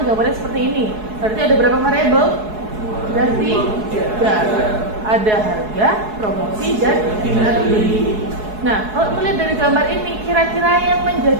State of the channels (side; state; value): left; late; 4.7 ms